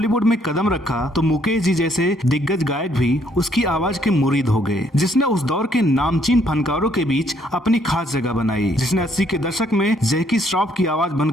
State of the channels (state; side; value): normal; both; correlation 0.68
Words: में कदम रखा तो मुकेश जी जैसे दिग्गज गायक भी उसकी आवाज के मुरीद हो गए, जिसने उस दौर के नामचीन फनकारों के बीच अपनी खास जगह बनाई, जिसने 80 के दशक में जैकी श्रॉफ की आवाज